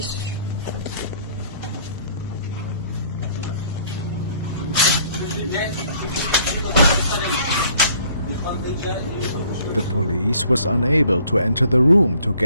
The police was unable to enter the room to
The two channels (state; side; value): inverted; both; correlation -0.59